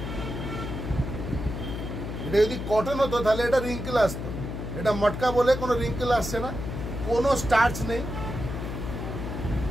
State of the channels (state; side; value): noise; left; hum, 6 dB below the sound